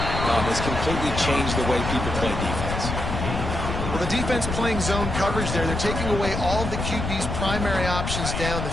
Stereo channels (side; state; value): left; noise; rumble, 4 dB below the sound